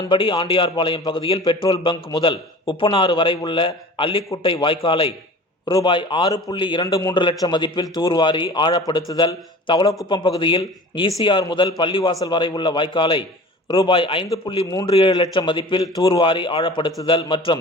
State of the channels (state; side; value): normal; both; correlation 0.41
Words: ஆண்டியார்பாளையம் பகுதியில் பெட்ரோல் பங்க் முதல் உப்பனாறு வரை உள்ள அல்லிக்குட்டை வாய்க்காலை ரூபாய் 6.23 லட்சம் மதிப்பில் தூர்வாரி ஆழப்படுத்துதல், தவளக்குப்பம் பகுதியில் ECR முதல் பள்ளிவாசல் வரை உள்ள வாய்க்காலை ரூபாய் 5.37 லட்சம் மதிப்பில் தூர்வாரி ஆழப்படுத்துதல் மற்றும்